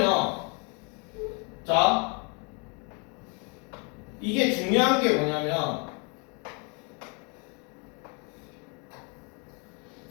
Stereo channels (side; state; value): right; quieter; 34.5 dB